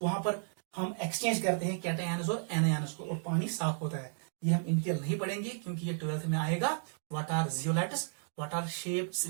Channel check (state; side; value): silent; left; digital silence